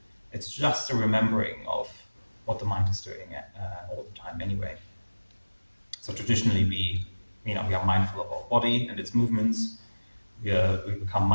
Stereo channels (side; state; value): both; inverted; correlation -1.00